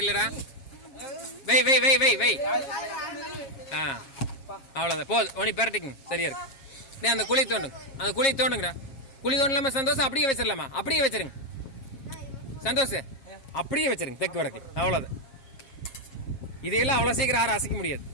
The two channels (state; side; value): late; right; 7.4 ms